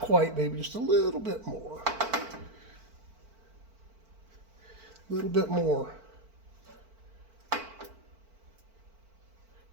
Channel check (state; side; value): late; left; 4.5 ms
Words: maybe just a little bit more. A little bit more.